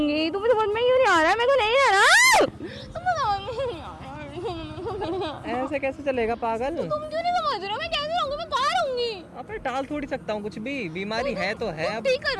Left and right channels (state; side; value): identical; both; correlation 1.00